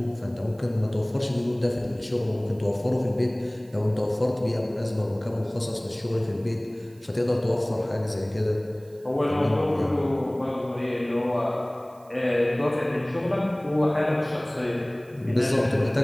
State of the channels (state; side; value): noise; right; hiss, 30 dB below the sound